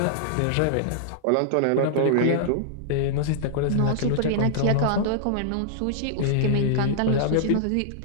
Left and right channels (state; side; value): different; both; correlation -0.01